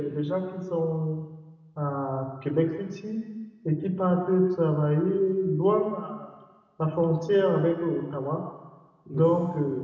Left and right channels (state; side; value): identical; both; correlation 1.00